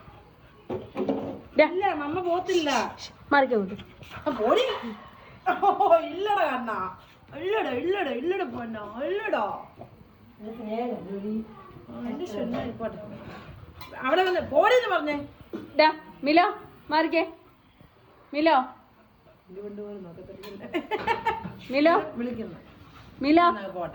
ഇല്ല മമ്മ പോത്തില്ല. മാറിക്കേ അങ്ങോട്ട്. പോടി. ഇല്ലടാ കണ്ണാ. ഇല്ലടാ ഇല്ലടാ ഇല്ലടാ പോന്നാ ഇല്ലടാ. അവിടെ വന്ന് പോടിന്ന് പറഞ്ഞേ. മിലോ മാറിക്കേ. മിലോ മിലോ വിളിക്കുന്നു. മിലോ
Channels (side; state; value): both; identical; correlation 1.00